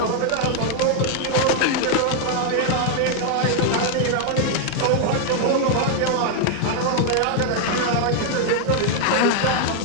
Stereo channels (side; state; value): both; different; correlation 0.00